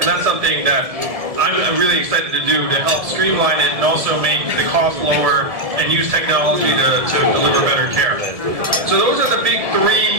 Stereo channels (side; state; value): left; late; 1.7 ms